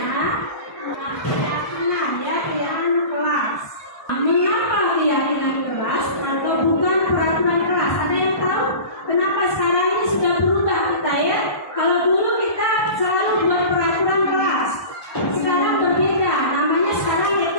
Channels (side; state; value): right; late; 1.2 ms